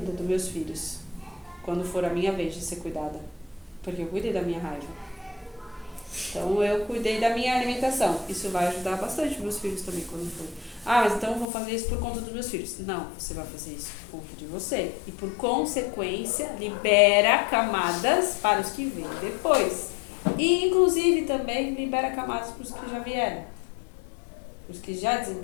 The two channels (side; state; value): right; drops out; at 11.5 s